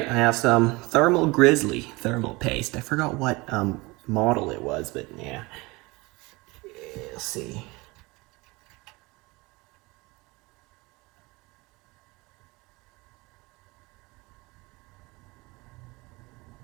I have some Thermal Grizzly thermal paste. I forgot what model it was, but yeah. Let's see.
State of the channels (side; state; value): left; quieter; 23.8 dB